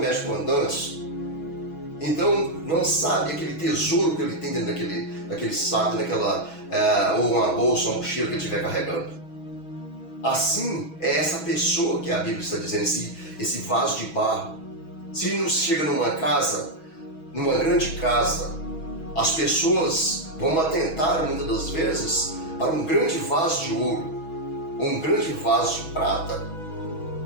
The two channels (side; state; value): right; late; 6.2 ms